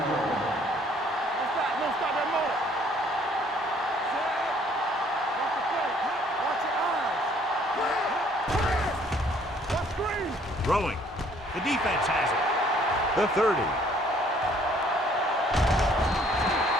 line. Don't stop that motor. Watch the play. Watch your eyes. Watch screen. Throwing. The defense has it. The 30.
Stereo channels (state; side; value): normal; both; correlation 0.61